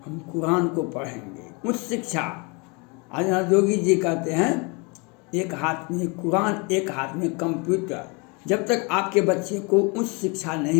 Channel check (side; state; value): right; quieter; 30.5 dB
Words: हम कुरान को पढ़ेंगे। उच्च शिक्षा, आज योगी जी कहते हैं एक हाथ में कुरान एक हाथ में कंप्यूटर। जब तक आपके बच्चे को उच्च शिक्षा